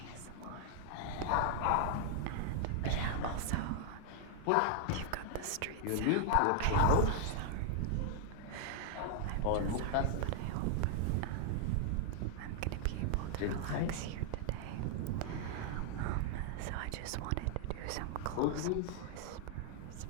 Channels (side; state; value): both; different; correlation 0.00